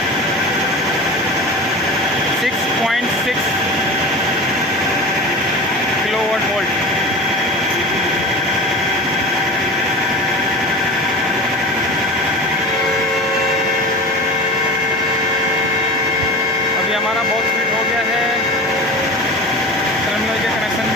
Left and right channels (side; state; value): both; normal; correlation 0.33